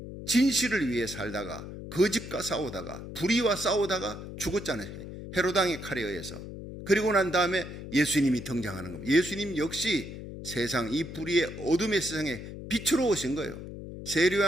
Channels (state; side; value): noise; left; hum, 10 dB below the sound